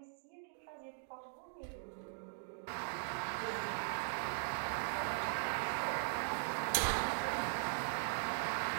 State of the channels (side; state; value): left; silent; digital silence